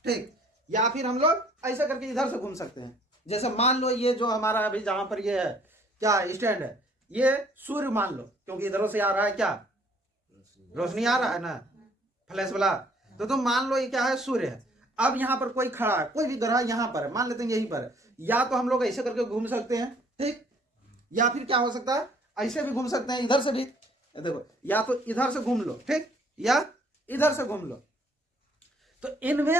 ठीक, या फिर हम लोग ऐसे करके इधर से घूम सकते हैं। जैसे मान लो ये जो हमारा अभी जहां पर ये है क्या स्टैंड है, ये सूर्य मान लो, क्योंकि इधरों से आ रहा है क्या, रोशनी आ रहा है ना, फ्लैश वाला, तो तुम मान लो ये क्या है, सूर्य है। अब यहाँ पर कोई खड़ा है, कोई भी ग्रह यहाँ पर है, मान लेते हैं यहीं पर है, या तो हम लोग ऐसे करके घूम सकते हैं, ठीक, या फिर क्या हो सकता है, ऐसे भी घूम सकते हैं, इधर से भी, देखो, या तो इधर से घूम लो, ठीक, या इधर से घूम लो। तो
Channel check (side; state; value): both; normal; correlation 0.60